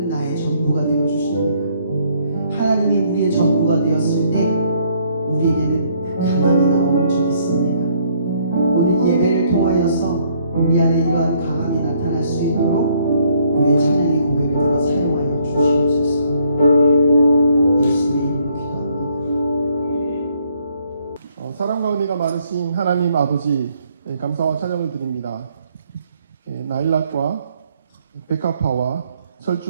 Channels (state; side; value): inverted; both; correlation -0.67